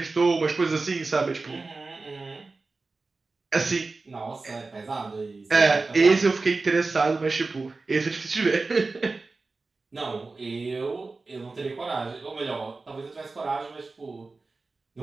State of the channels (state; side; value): quieter; left; 3.7 dB